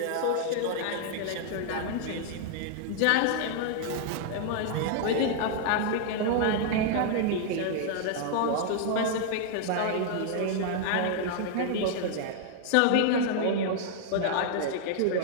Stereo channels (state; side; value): different; both; correlation -0.01